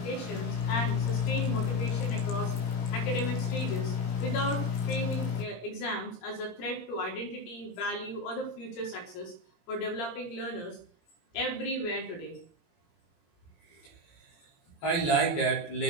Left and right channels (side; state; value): right; late; 17 ms